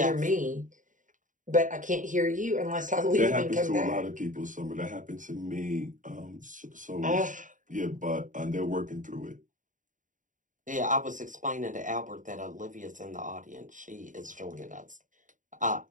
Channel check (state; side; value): late; left; 0.37 ms